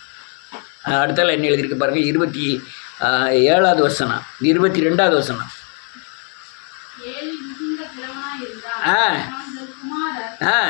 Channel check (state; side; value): quieter; right; 40.0 dB